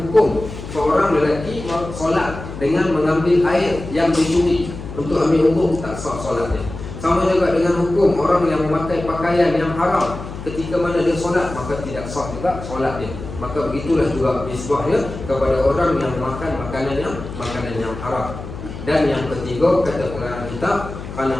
seorang lelaki solat dengan mengambil air yang dicuri untuk ambil wudu, tak sah solatnya. Sama juga dengan hukum orang yang memakai pakaian yang haram, ketika mana dia solat maka tidak sah juga solat dia. Maka begitulah juga nisbahnya kepada orang yang makan makanan yang haram. Dan yang ketiga, kata pengarang kitab, kerana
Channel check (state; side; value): noise; left; hum, 10 dB below the sound